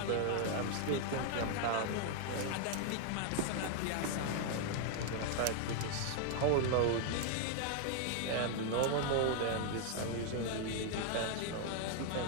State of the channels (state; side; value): different; both; correlation 0.00